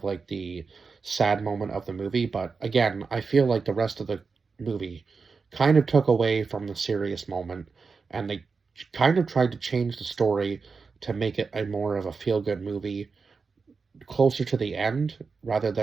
like the sad moment of the movie. But again, I feel like the rest of the movie kind of took away from the serious moment, and they kind of tried to change the story to make it a more of a feel good movie closer to the end rather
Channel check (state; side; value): quieter; left; 4.8 dB